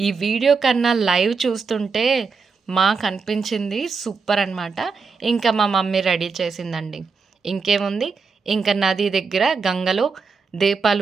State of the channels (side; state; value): left; quieter; 4.9 dB